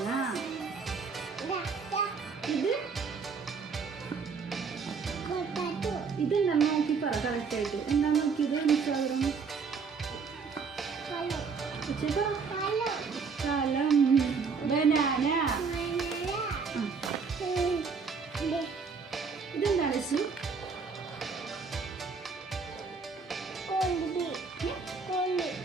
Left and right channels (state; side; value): quieter; left; 5.2 dB